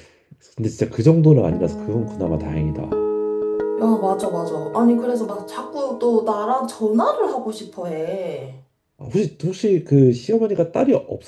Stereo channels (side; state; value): both; identical; correlation 1.00